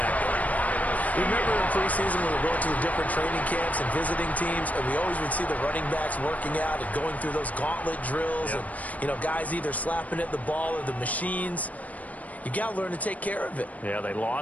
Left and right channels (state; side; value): late; right; 0.071 ms